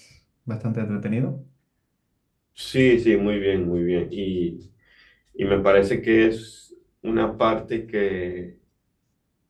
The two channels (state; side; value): identical; both; correlation 1.00